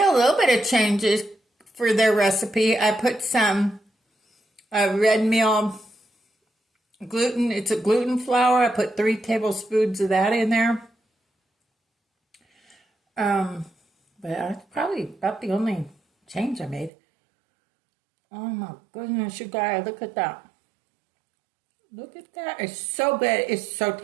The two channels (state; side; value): drops out; left; at 16.9 s